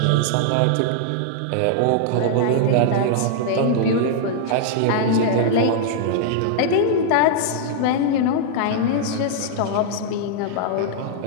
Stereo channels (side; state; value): both; different; correlation -0.01